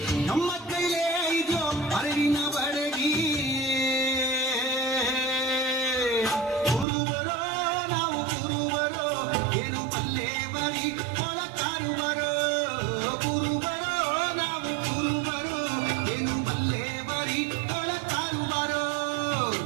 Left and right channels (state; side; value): drops out; left; at 6.9 s